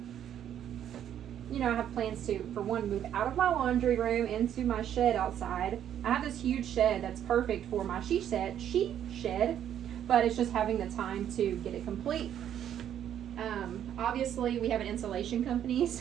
you know, I have plans to, for one, move out of my laundry room into my shed outside. I have this huge shed that's perfect for my sheet shed, but it's just having the time to get it complete. Obviously, we have an insulation company,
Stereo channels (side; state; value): left; quieter; 10.1 dB